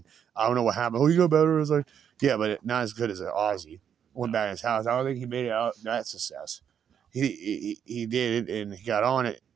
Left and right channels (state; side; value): quieter; left; 8.4 dB